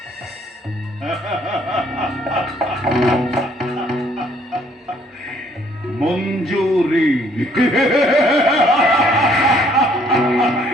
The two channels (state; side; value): normal; both; correlation 0.63